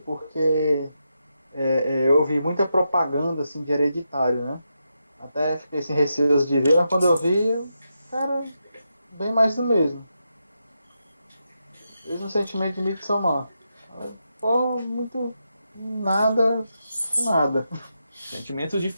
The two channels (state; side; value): inverted; both; correlation -0.86